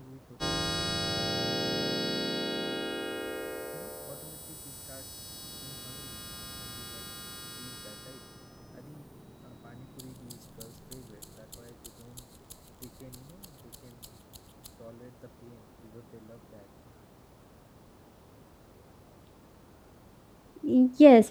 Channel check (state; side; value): identical; both; correlation 1.00